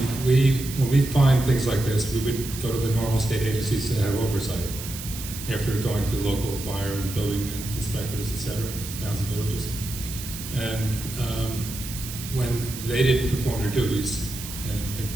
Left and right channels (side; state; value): right; noise; hiss, 10 dB below the sound